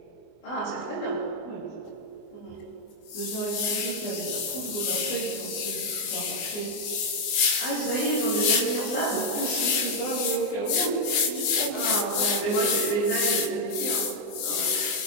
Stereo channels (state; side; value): late; right; 24 ms